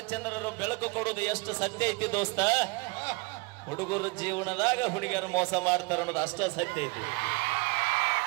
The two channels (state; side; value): quieter; left; 27.8 dB